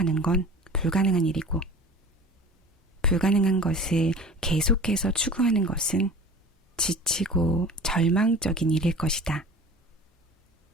건 불가능한 일이고 불가능한 것을 계속해서 추구하는 것은 지치고 절망적인 일일 것이다.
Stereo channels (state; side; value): normal; both; correlation 0.40